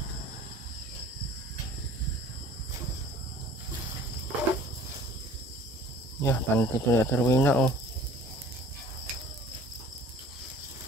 Ya, panty to na Rowena, oh.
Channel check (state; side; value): normal; both; correlation 0.49